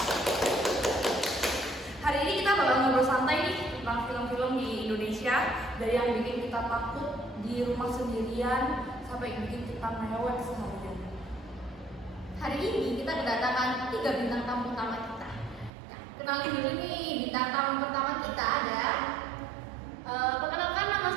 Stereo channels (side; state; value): left; drops out; at 15.7 s